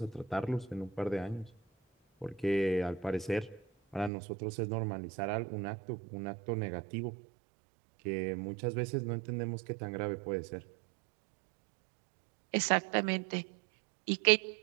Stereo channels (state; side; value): drops out; left; at 4.1 s